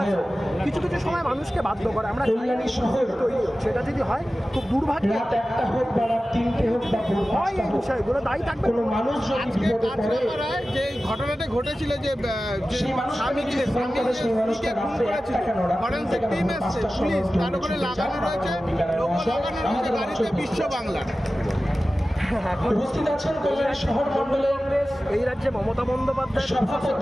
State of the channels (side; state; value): both; normal; correlation 0.95